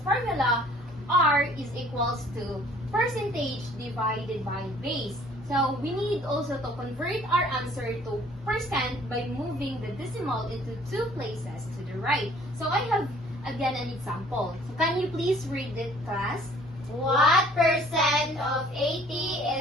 R is equals to percentage divided by base. So we need also to convert our answer to percent by moving the decimal into two places to the right. So I have again an example. So can you please read it, class? What percent of 80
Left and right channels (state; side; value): normal; both; correlation 0.55